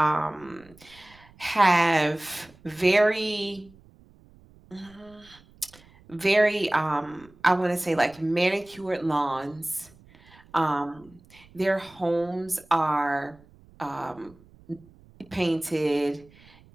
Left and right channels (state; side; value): noise; right; rumble, 26 dB below the sound